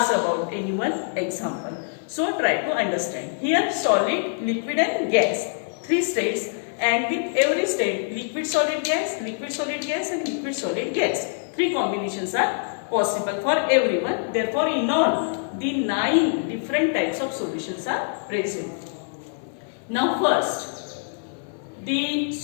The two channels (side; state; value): right; silent; digital silence